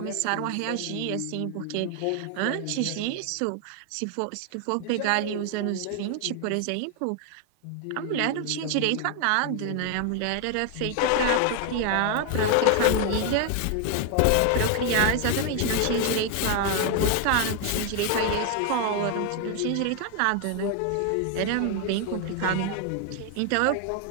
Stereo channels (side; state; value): both; different; correlation 0.00